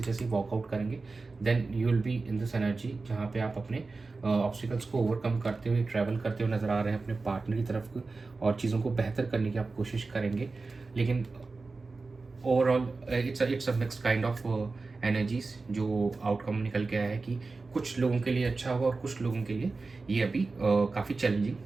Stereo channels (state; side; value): quieter; left; 3.9 dB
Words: जैसे ही वॉकआउट करेंगे then you will be in this energy जहाँ पे आप अपने ऑब्स्टिकल्स को ओवरकम करते हुए ट्रैवल करते हुए नज़र आ रहे हैं अपने पार्टनर की तरफ और चीज़ों को बेहतर करने की आप कोशिश करेंगे. लेकिन overall it's a mixed kind of energies. जो आउटकम निकल के आया है कि कुछ लोगों के लिए अच्छा होगा और कुछ लोगों के लिए ये अभी काफ़ी चैलेंजिंग